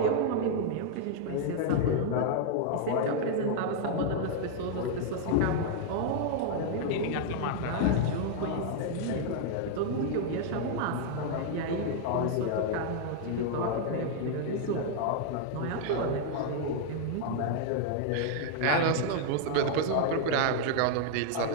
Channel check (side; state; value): both; different; correlation 0.00